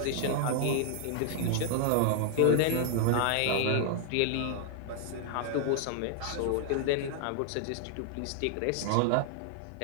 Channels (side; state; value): both; different; correlation 0.00